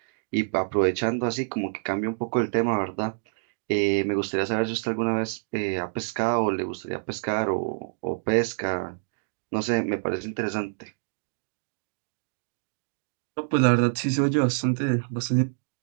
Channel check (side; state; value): left; silent; digital silence